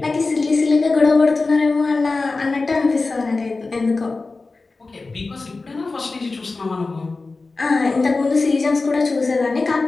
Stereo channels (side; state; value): right; quieter; 3.7 dB